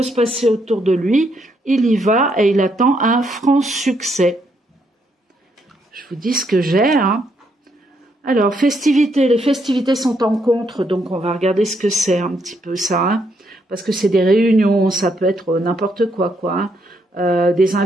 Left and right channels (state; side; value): normal; both; correlation 0.75